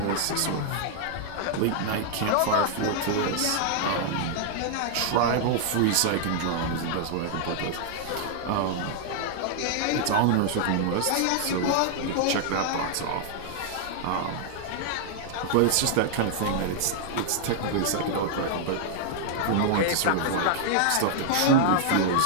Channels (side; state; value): both; different; correlation -0.01